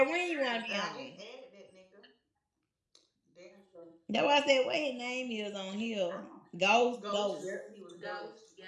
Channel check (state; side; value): identical; both; correlation 1.00